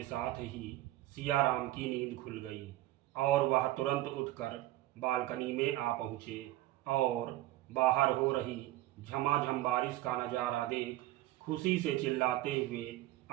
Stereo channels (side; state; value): left; quieter; 16.1 dB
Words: साथ ही सियाराम की नींद खुल गई और वह तुरंत उठकर बालकनी में आ पहुँचे और बाहर हो रही झमाझम बारिश का नज़ारा देख खुशी से चिल्लाते हुए